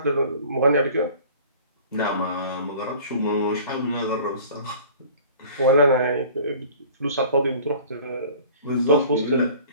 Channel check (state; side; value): inverted; both; correlation -0.46